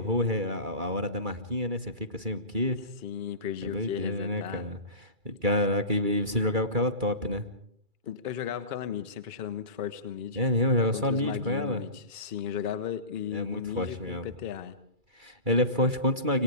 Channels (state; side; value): late; left; 2.3 ms